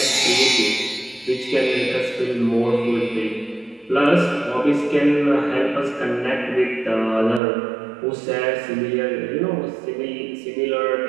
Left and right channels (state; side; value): drops out; left; at 7.4 s